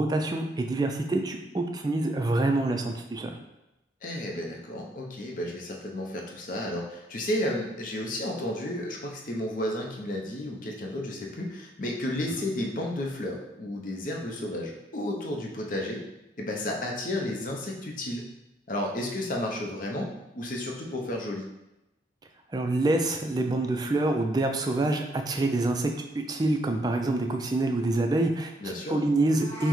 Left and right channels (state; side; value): normal; both; correlation 0.70